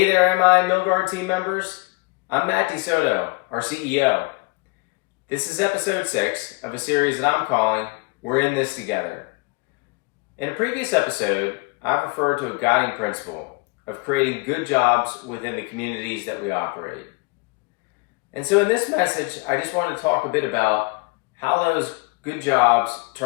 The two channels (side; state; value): right; quieter; 28.6 dB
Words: there, MI and Milgard team members. I'm Matt DeSoto, our CEO. This is episode 6 of a series that I'm calling We're in This Together. In a previous episode, I've referred to a guiding principle of creating good jobs within the communities that we operate. And so in this message, I just want to talk a bit about how those good jobs